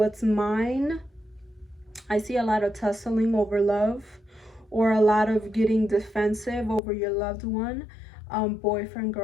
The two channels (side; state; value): right; drops out; at 6.8 s